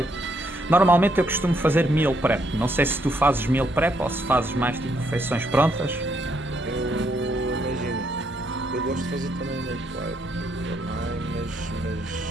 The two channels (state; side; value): normal; both; correlation 0.74